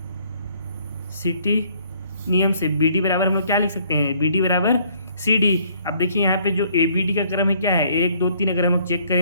नियम से BD बराबर हम लोग क्या लिख सकते हैं, BD बराबर सी डी। अब देखिए यहाँ पे जो ए बी डी का क्रम है क्या है 1 2 3, अगर हम लोग चेक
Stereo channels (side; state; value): both; inverted; correlation -0.63